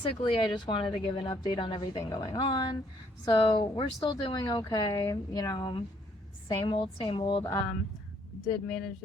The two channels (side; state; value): both; normal; correlation 0.67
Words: I just wanted to give an update on everything going on. So we're still doing okay, same old, same old. Did manage